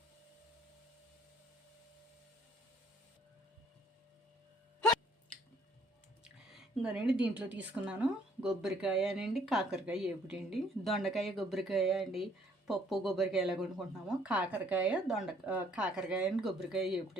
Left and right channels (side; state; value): both; normal; correlation 0.63